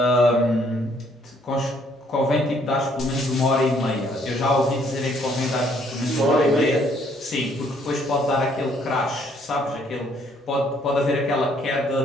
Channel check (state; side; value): normal; both; correlation 0.65